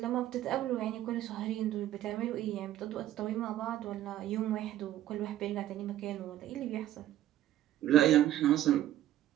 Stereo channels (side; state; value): left; quieter; 13.1 dB